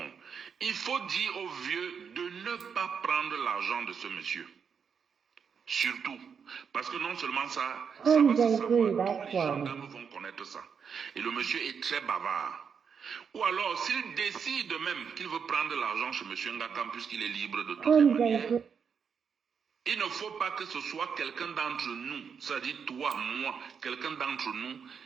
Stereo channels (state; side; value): quieter; left; 6.6 dB